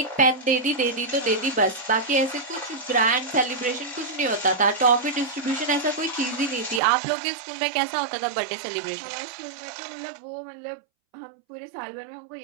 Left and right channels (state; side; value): drops out; left; at 6.8 s